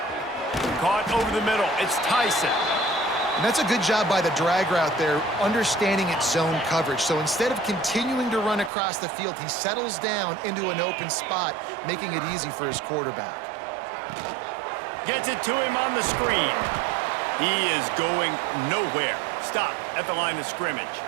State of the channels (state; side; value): drops out; left; at 8.7 s